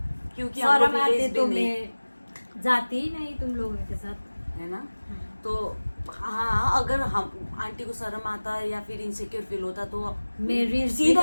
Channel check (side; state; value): both; inverted; correlation -1.00